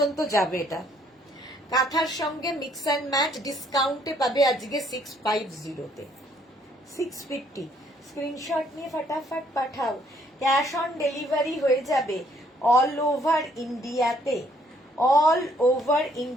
যাবে এটা। কাঁথার সঙ্গে মিক্স অ্যান্ড ম্যাচ ডিসকাউন্টে পাবে আজকে 650-তে। 650 স্ক্রিনশট নিয়ে ফটাফট পাঠাও। ক্যাশ অন ডেলিভারি হয়ে যাবে অল ওভার ইন্ডিয়াতে। অল ওভার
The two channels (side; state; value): both; normal; correlation 0.66